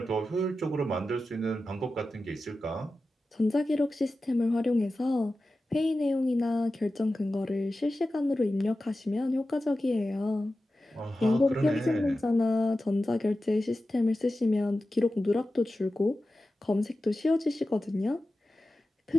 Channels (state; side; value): normal; both; correlation 0.94